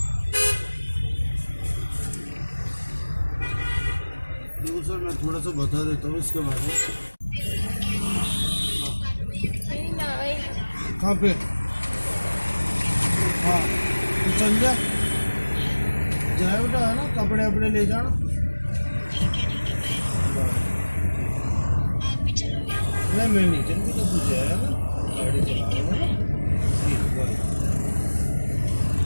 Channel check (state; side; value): inverted; both; correlation -1.00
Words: सर मैं थोड़ा सा बता देता हूँ इसके बारे में। कहाँ पे? हाँ तो चल जा, जाए बेटा, है ना, कपड़े वपड़े ले जाना। नहीं मैं नहीं चलूँगा, तो तू जाएगा ना, गाड़ी चला रहा है। ठीक है।